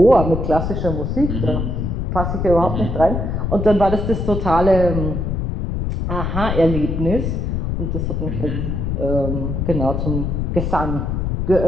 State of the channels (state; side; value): noise; left; rumble, 1 dB below the sound